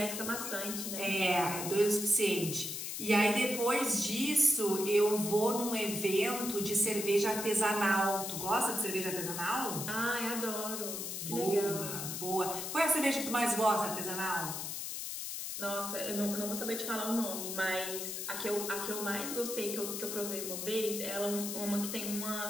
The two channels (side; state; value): left; noise; hiss, 5 dB below the sound